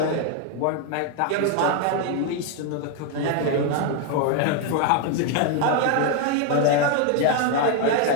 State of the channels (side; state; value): both; different; correlation 0.01